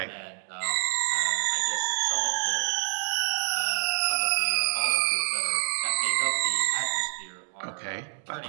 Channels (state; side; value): silent; left; digital silence